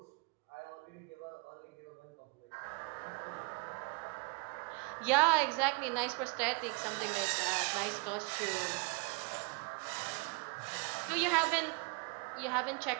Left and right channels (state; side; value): quieter; left; 31.0 dB